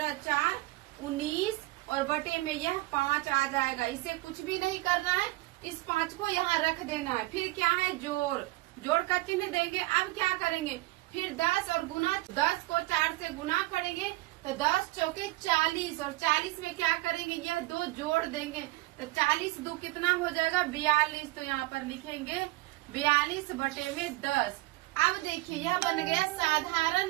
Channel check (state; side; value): quieter; left; 20.6 dB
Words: 4 19 और बटे में यह 5 आ जाएगा। इसे कुछ भी नहीं करना है, इस 5 को यहाँ रख देना है। फिर क्या है, जोड़, जोड़ का चिन्ह देंगे। अब क्या करेंगे, फिर 10 और गुना, 10 को 4 से गुना करेंगे तो 10 चौके 40 और 40 में क्या करेंगे, यह 2 जोड़ देंगे तो 40 2 कितना हो जाएगा 42। तो यहाँ पर लिखेंगे 42 बटे में 10। अब देखिए यह बन गया